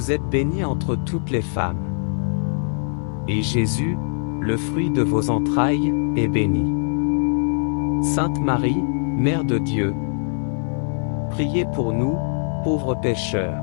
êtes bénie entre toutes les femmes. Et Jésus, le fruit de vos entrailles, est béni. Sainte Marie, Mère de Dieu, priez pour nous, pauvres pécheurs,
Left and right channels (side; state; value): right; silent; 64 dB below the other